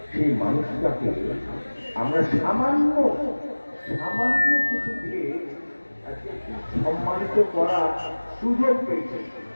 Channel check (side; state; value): both; inverted; correlation -1.00